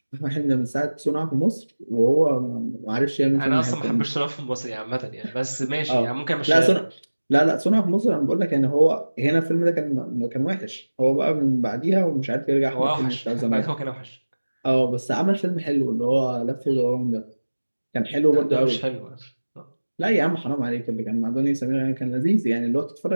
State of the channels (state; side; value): inverted; both; correlation -1.00